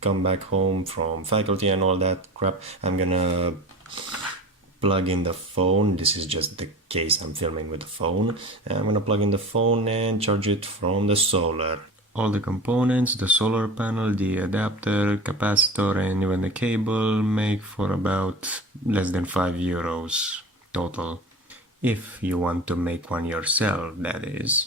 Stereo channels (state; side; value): normal; both; correlation 0.35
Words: come back home from faculty and all that crap, I'm gonna plug in the phone. This is just the case I'm filming with the phone. I'm gonna plug in the phone and charge it from the solar. All the components, the solar panel, the adapter, capacitor, and even the cable make for about less than €5 total. If you want to make one yourself, that